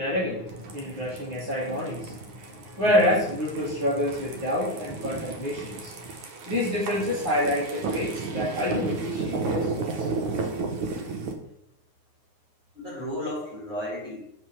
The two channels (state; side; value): late; left; 9.5 ms